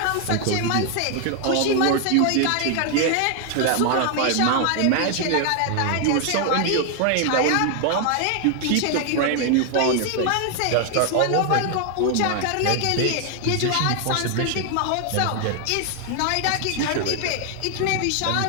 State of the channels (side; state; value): both; different; correlation 0.00